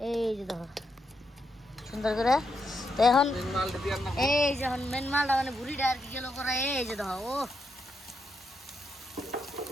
এই যে দেখো সুন্দর করে তো এখন এই যে এখন মেন মালটা মানে ভুড়িটা আর কি গেল করা এই যে দেখো ও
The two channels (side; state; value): both; normal; correlation 0.81